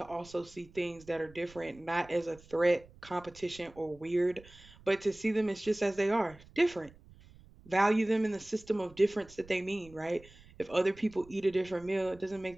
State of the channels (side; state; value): right; noise; rumble, 23 dB below the sound